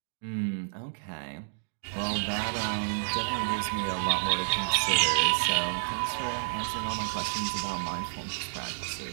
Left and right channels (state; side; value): silent; left; digital silence